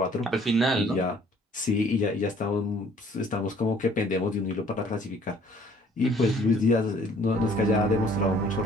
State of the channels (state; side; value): normal; both; correlation 0.58